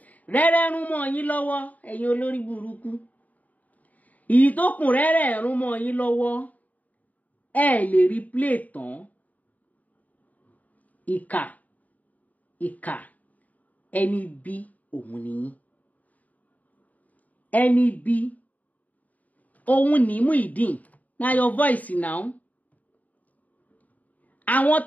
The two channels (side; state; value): right; late; 0.074 ms